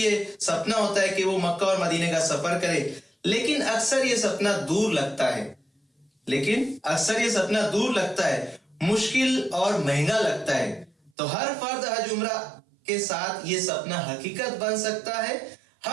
है, सपना होता है कि वो मक्का और मदीने का सफर करे, लेकिन अक्सर ये सपना दूर लगता है, मुश्किल और महंगा लगता है। तो हर फर्द हज उम्रा के साथ ये सपना हकीकत बन सकता है।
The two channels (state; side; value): drops out; left; at 11.1 s